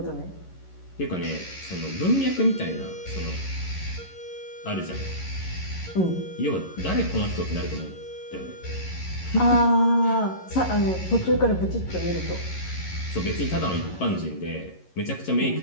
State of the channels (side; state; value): right; late; 11 ms